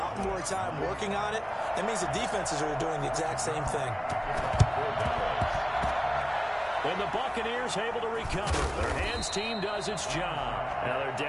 more time working on it. That means the defenses are doing the exact same thing. And the Buccaneers able to recover. Their hands team does its job. Now they're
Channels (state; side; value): identical; both; correlation 1.00